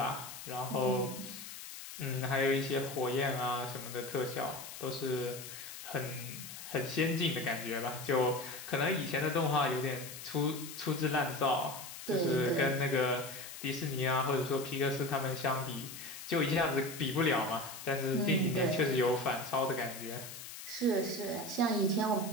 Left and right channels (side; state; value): left; noise; hiss, 11 dB below the sound